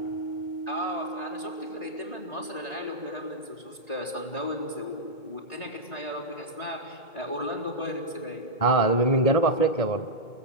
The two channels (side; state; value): right; late; 2.2 ms